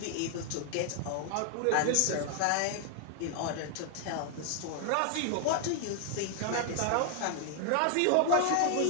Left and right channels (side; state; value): both; different; correlation 0.00